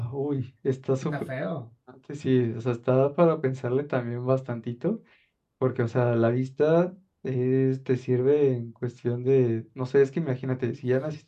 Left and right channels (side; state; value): both; identical; correlation 1.00